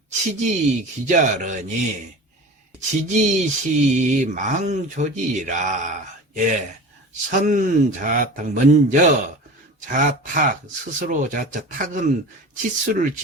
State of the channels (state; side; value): normal; both; correlation 0.35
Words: 치지기자르니 지지시 망조지라. 예, 선자탁, 먼저 자탁, 스스로 자자, 탁은 치수를